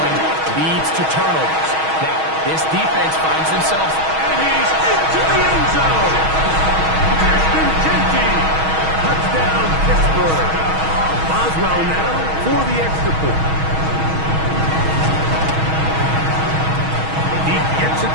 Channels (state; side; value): late; left; 6.3 ms